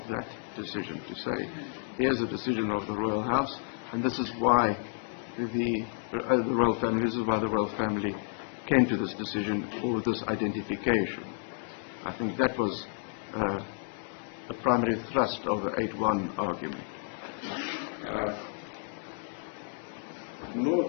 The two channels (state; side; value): silent; right; 57 dB below the other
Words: that decision, to say, here's a decision of the Royal House, and this is why the Royal Family, this is why the Royal Family came to this decision, or this identification. I think that was the primary thrust of the 8.1 argument. My